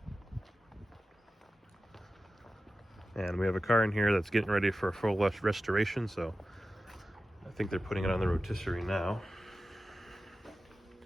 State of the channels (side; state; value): both; normal; correlation 0.93